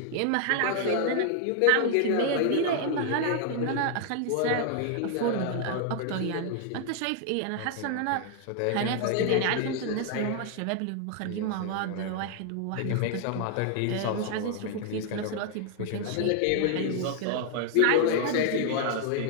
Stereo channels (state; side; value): different; both; correlation 0.00